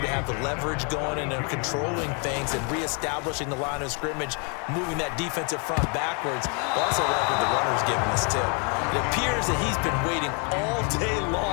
have the leverage going, and they're controlling things and reestablishing the line of scrimmage, moving that defensive front backwards. I also like what the runner's giving us, too. It appears that he's been waiting all day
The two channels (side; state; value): right; quieter; 36.4 dB